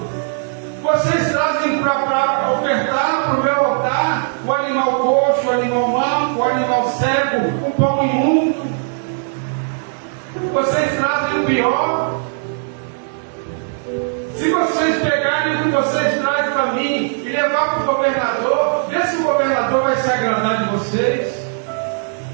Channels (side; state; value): left; silent; 63 dB below the other